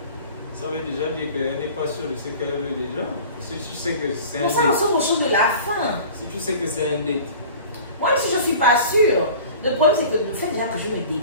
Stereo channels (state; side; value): inverted; both; correlation -0.42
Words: Ça veut déjà dire qu'elle n'est pas sûre de ce qu'elle veut déjà. Si tu sais que c'est un Mais ça, on sort aux choses de la fin. Si tu sais que c'est un date. Moi, si je ne suis pas sûre, le problème c'est que le fait déjà que je me